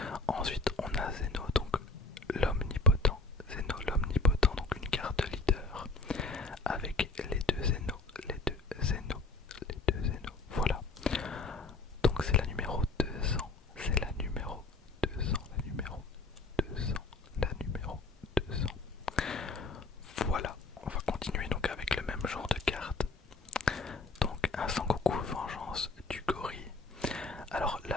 Ensuite on a Zeno, donc l'omnipotent. Zeno l'omnipotent, donc une carte leader avec les deux Zeno, voilà. Donc c'est la numéro 200, c'est la numéro 200, la numéro 200, la numéro 200. Voilà, on va continuer donc avec le même genre de carte. Donc un Sangoku Vengeance du Gorille. Alors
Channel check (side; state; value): right; quieter; 3.4 dB